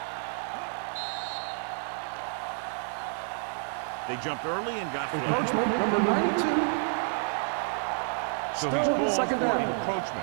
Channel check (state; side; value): silent; left; 58 dB below the other